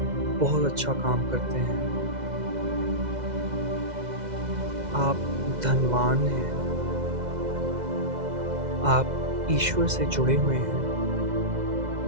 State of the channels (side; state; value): left; late; 2.0 ms